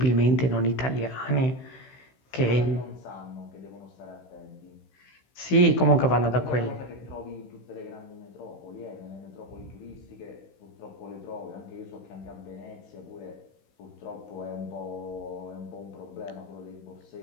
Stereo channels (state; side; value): late; right; 15 ms